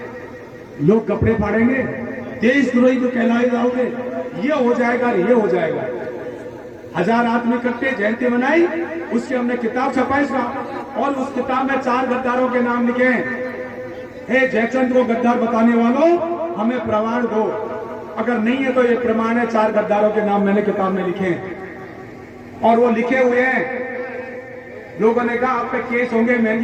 लोग कपड़े फाड़ेंगे, देशद्रोही को कहलाए जाओगे, ये हो जाएगा, ये हो जाएगा। 1000 आदमी इकट्ठे जयंती मनाई, उसकी हमने किताब छपाई और उस किताब में 4 गद्दारों के नाम लिखे हैं। हे जयचंद को गद्दार बताने वालों, हमें प्रमाण दो। अगर नहीं है तो ये प्रमाण है, 4 गद्दारों के नाम मैंने किताब में लिखे हैं और वो लिखे हुए हैं। लोगों ने कहा आप पे केस होंगे,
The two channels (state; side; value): identical; both; correlation 1.00